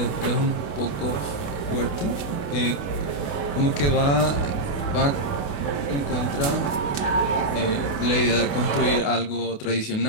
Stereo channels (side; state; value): right; late; 28 ms